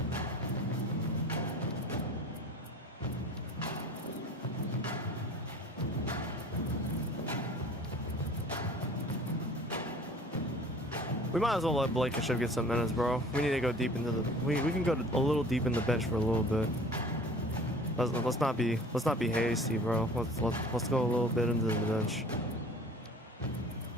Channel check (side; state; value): both; normal; correlation 0.46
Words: We might as well let Blankenship get some minutes, bro. We need to go deep into the. We can go a little deep in the bench for a little bit. Let's not be hasty, bro. Let's go a little bit into the bench.